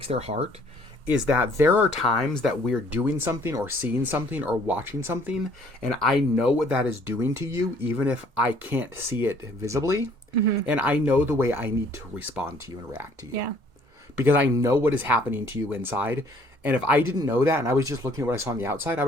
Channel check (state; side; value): late; left; 2.1 ms